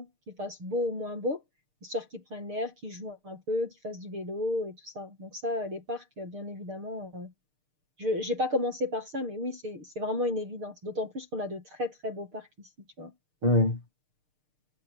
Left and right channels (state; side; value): late; left; 6.6 ms